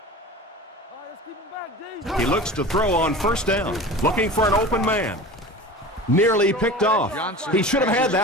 right, let's keep him back, D. He looks to throw on first down, looking for an open man. Nearly picked off. He should have had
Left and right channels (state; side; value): normal; both; correlation 0.35